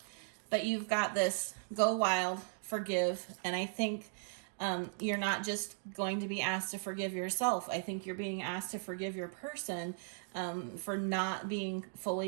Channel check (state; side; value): silent; left; digital silence